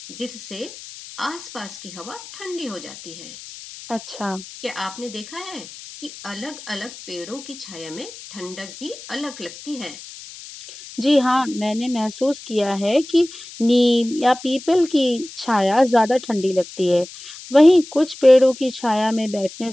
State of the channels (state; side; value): noise; left; hiss, 15 dB below the sound